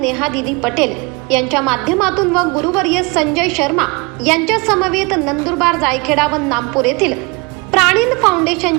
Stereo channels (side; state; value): left; quieter; 28.3 dB